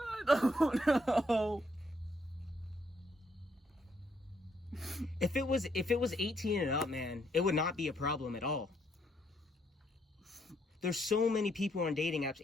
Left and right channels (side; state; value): both; normal; correlation 0.72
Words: don't know. If it was 18 and up, man, it would not be a problem at all. There's so many people on dating apps